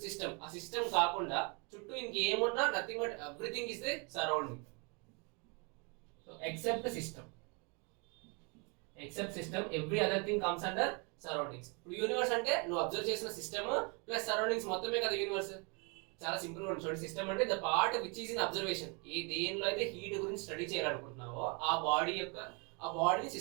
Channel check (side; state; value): left; quieter; 33.0 dB